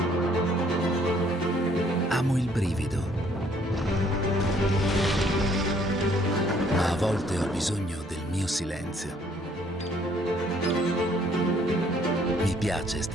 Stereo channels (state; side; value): normal; both; correlation 0.63